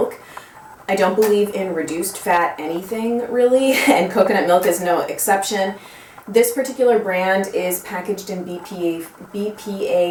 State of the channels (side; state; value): both; identical; correlation 1.00